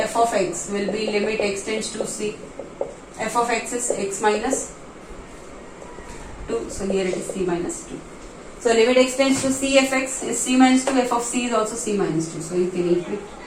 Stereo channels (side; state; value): both; identical; correlation 1.00